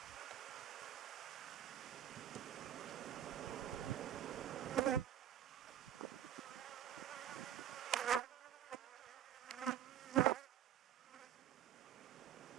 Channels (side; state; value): left; quieter; 10.8 dB